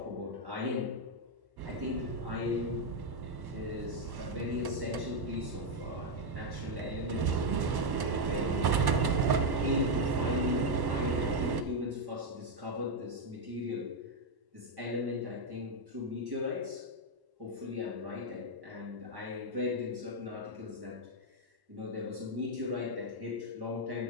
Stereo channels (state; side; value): late; left; 1.1 ms